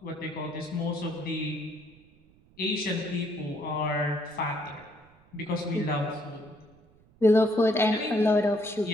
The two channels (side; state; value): right; noise; rumble, 29 dB below the sound